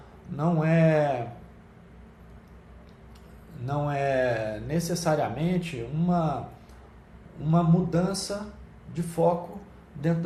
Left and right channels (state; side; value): identical; both; correlation 1.00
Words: não é necessariamente uma mudança de foco dentro